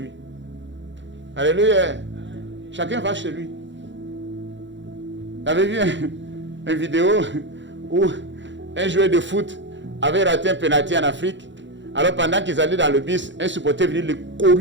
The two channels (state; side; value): late; left; 0.54 ms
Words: Alléluia. Chacun va chez lui. J'avais vu une vidéo où un joueur de foot avait raté un penalty en Afrique. Alors pendant qu'ils allaient dans le bus, un supporter venait le